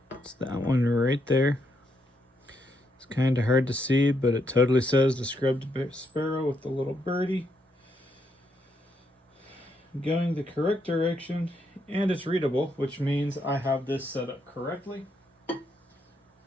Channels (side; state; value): both; normal; correlation 0.77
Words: It's that one right there. It's kind of hard to see, but it totally says the scrubbed sparrow with the little birdie. Going the correct direction, and it's readable, which means I have this set up correctly.